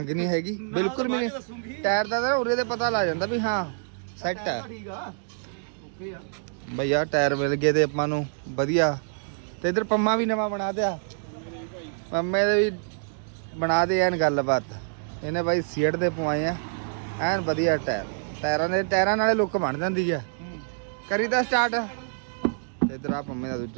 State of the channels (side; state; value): left; silent; digital silence